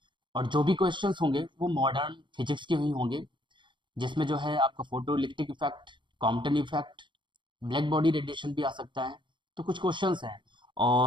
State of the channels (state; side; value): late; left; 0.23 ms